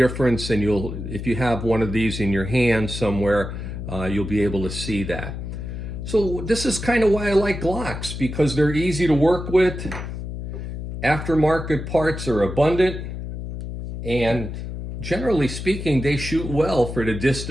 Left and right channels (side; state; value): left; noise; hum, 7 dB below the sound